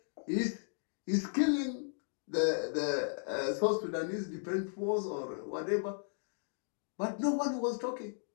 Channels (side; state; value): right; silent; digital silence